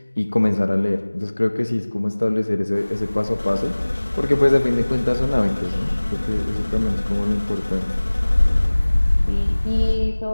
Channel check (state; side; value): inverted; both; correlation -1.00